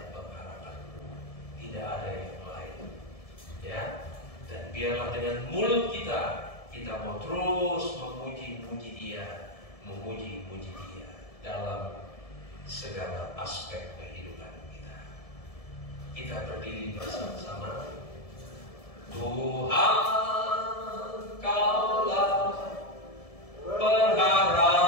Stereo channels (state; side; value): late; right; 1.7 ms